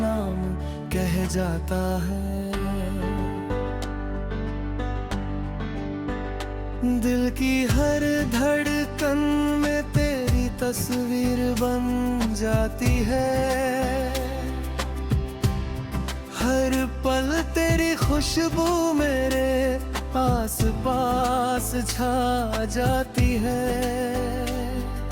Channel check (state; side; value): identical; both; correlation 1.00